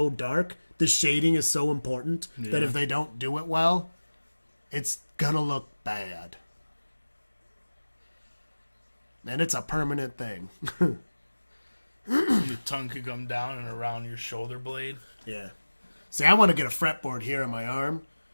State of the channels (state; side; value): inverted; both; correlation -1.00